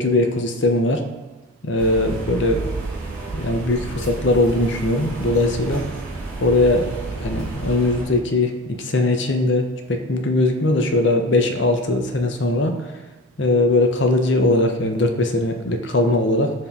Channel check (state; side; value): normal; both; correlation 0.29